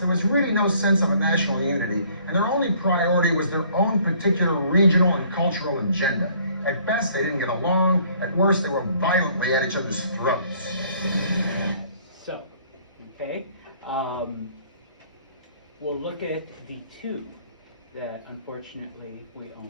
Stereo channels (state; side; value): inverted; both; correlation -0.59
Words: was really no sense of a national unity, and their only priority was their own particular regional and cultural agenda. At best, they didn't get along. At worst, they were violently at each other's throats. So, okay, we'll look at the two that unfortunately we